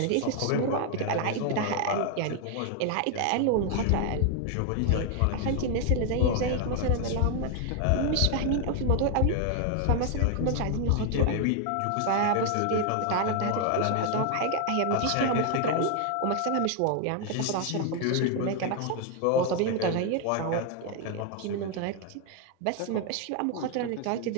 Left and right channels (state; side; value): different; both; correlation 0.01